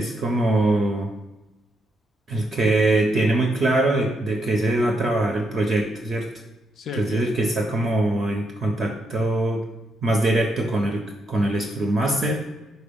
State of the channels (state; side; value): normal; both; correlation 0.80